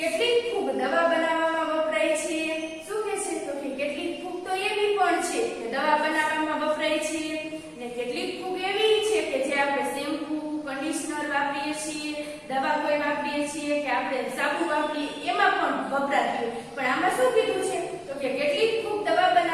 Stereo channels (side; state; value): both; identical; correlation 1.00